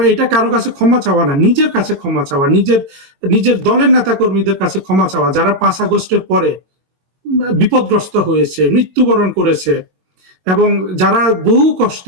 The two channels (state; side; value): late; left; 22 ms